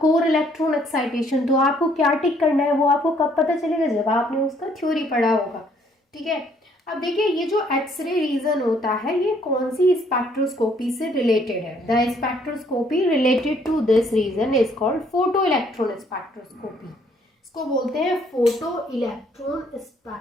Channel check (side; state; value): both; normal; correlation 0.65